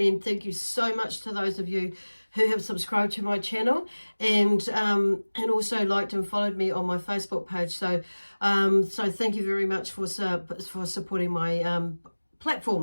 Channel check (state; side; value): inverted; both; correlation -1.00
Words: thank you so much to those of you who have subscribed to my channel and also liked and followed me on my Facebook page. So thank you very much for supporting my